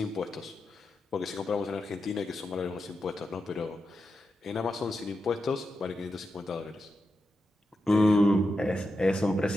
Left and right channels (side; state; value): both; normal; correlation 0.88